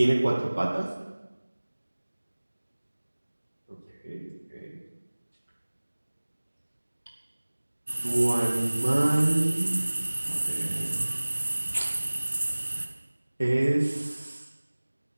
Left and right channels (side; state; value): both; inverted; correlation -1.00